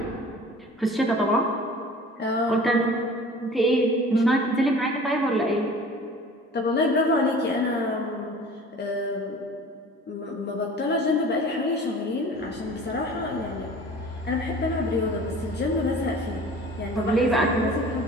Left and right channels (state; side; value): normal; both; correlation 0.44